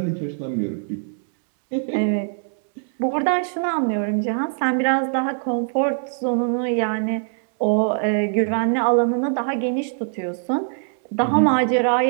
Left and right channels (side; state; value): left; silent; 64 dB below the other